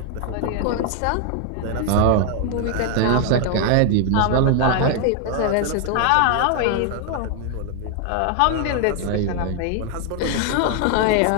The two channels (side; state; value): both; different; correlation 0.00